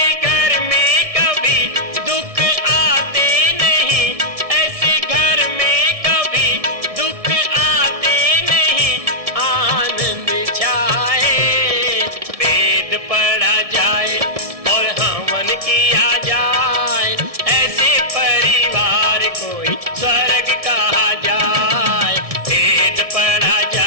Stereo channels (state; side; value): late; left; 1.7 ms